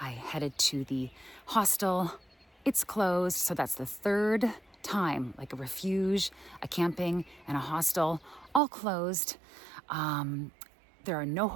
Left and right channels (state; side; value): drops out; left; at 8.6 s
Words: headed to the hostel. It's closed, so that's the third time, like a refuge, a camping, and a hostel, all closed. There are no